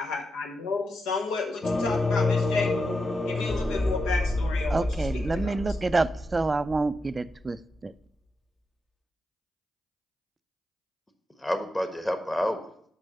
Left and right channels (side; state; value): both; normal; correlation 0.87